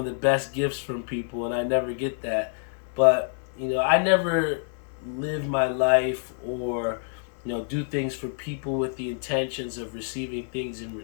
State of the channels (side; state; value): right; silent; 57 dB below the other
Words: the best gifts from people, and I never get that. But, I never live my life or, do things for people with the intentions of receiving things in